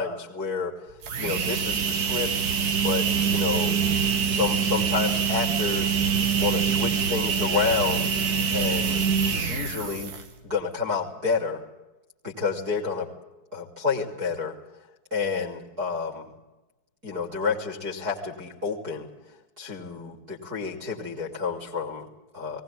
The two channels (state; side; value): late; left; 4.6 ms